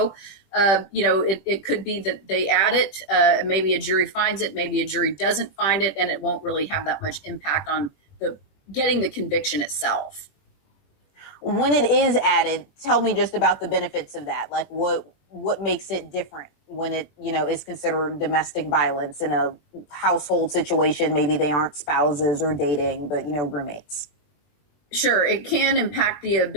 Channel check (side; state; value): right; late; 21 ms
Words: it could be that they add it, maybe a jury finds it, maybe a jury doesn't find it, and it won't really have that much impact on getting the conviction itself. When it is added, tell me just about the benefits of that. Like what makes it different when it, is considered domestic violence in a household situation? Maybe they aren't spouses or dating, but, roommates. Sure. It can impact the